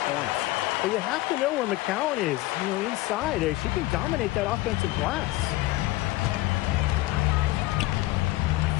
points. But you have to know where McCowan is, inside. She can dominate that offensive glass.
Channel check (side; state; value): right; quieter; 18.5 dB